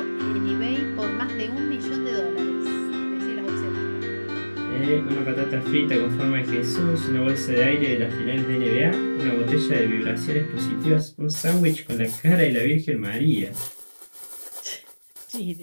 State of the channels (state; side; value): inverted; both; correlation -1.00